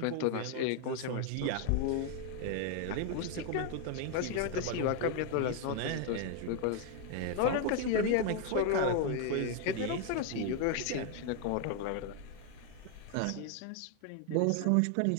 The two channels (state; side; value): different; both; correlation 0.01